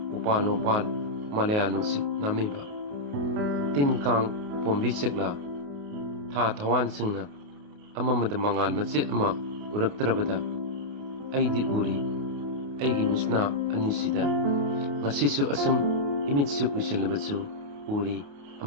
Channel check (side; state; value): left; late; 28 ms